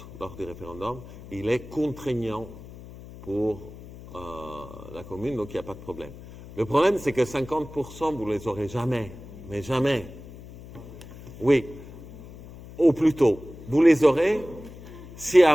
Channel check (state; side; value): noise; left; hum, 16 dB below the sound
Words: lors du référendum, il est contraignant pour la commune, donc il n'y a pas de problème. Le problème, c'est que 50%, vous ne les aurez jamais, mais jamais. Oui, au plus tôt. Vous les aurez si